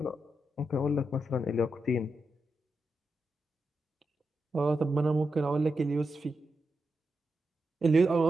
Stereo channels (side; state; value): both; normal; correlation 0.87